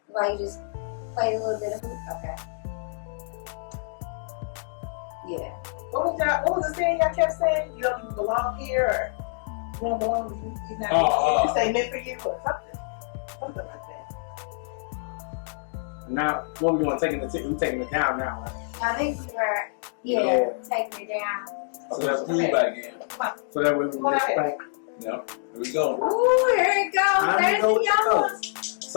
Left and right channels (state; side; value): silent; right; digital silence